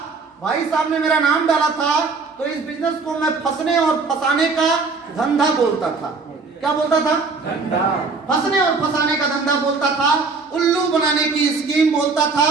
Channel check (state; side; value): quieter; left; 4.3 dB